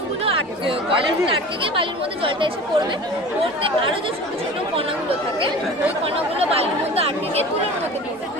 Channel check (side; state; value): both; normal; correlation 0.38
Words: কয়লার মধ্যে আটকে গিয়ে বালির মধ্যে জলটা এসে পড়বে, পড়তে আরও যে ছোটো ছোটো কণাগুলো থাকে ওই কণাগুলো বালির মধ্যে আটকে গিয়ে তুলোর মধ্যে পড়বে,